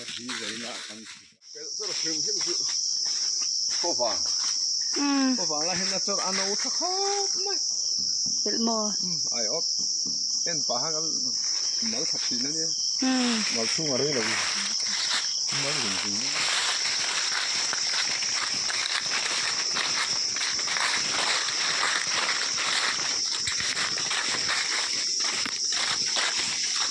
đi giấy lại ăn cái rất là phim hiện sự có vàng là hiện là cho ăn nấu thắc khóc mày bịt mò ai ốp em phá hàng mở thật gì nữa nhé mở xuống ở đây là mở gì nữa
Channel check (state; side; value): identical; both; correlation 1.00